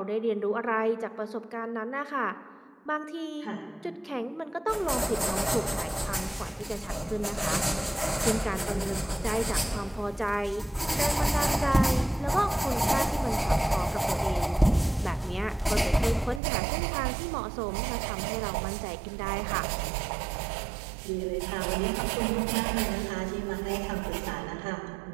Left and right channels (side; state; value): left; drops out; at 16.4 s